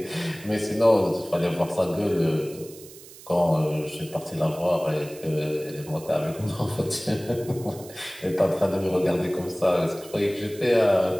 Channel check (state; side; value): noise; right; hiss, 19 dB below the sound